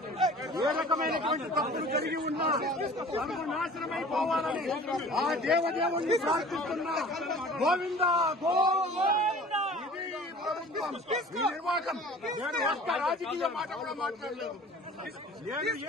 ఏ రకమైనటువంటి తప్పులు కలిగి ఉన్నా సర్వనాశనమైపోవాలని ఆ దేవదేవుణ్ణి ప్రార్థిస్తున్నా. గోవిందా గోవిందా. ఇది ప్రభుత్వం, ఈ నిర్వాహకం. నేను ఒక్క రాజకీయ మాట కూడా మాట్లాడలేదు. నేను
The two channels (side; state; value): both; normal; correlation 0.45